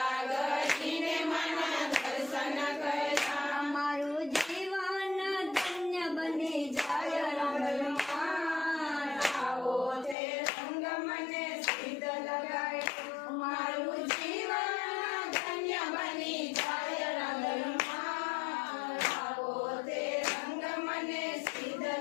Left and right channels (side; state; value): right; drops out; at 10.2 s